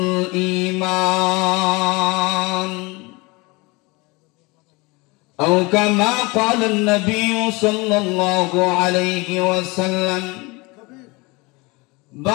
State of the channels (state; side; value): quieter; right; 25.3 dB